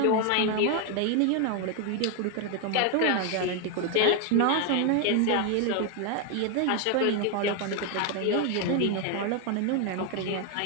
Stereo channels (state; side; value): different; both; correlation 0.01